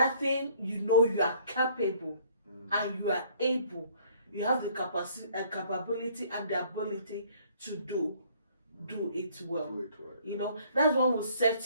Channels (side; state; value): both; inverted; correlation -0.60